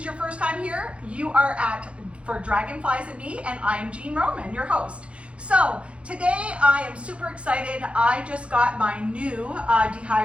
your first time here, you are at For Dragonflies and Me, and I'm Jean Roman, your host. So today I am super excited. I just got my new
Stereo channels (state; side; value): late; left; 0.061 ms